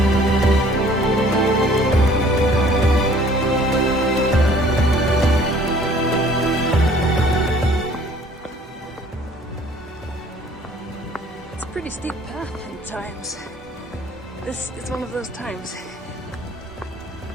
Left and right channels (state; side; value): normal; both; correlation 0.55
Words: Pretty steep path at times. This is one of those times.